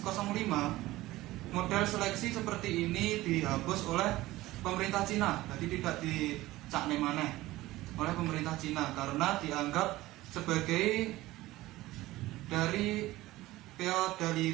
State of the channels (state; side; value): quieter; left; 17.6 dB